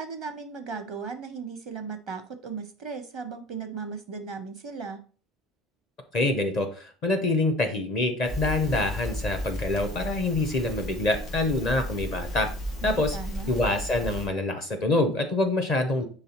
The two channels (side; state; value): both; normal; correlation 0.48